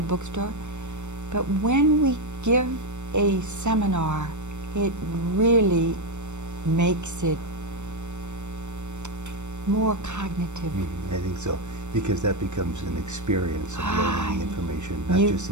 bookstore. But when we give a seminar, it really makes it more cognitive. I think so, because that becomes an experience of learning the information, not just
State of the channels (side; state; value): left; late; 0.84 ms